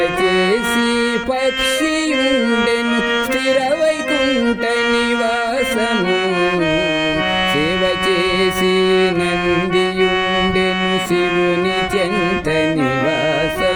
చేసి పక్షియుండెను స్థిర వైకుంఠ నివాసము సేవ చేసి నందియుండెను శివుని చెంత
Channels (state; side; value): identical; both; correlation 1.00